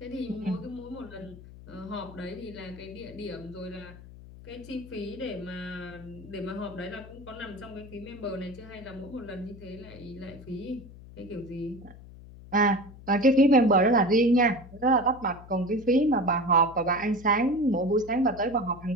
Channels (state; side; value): noise; left; hum, 17 dB below the sound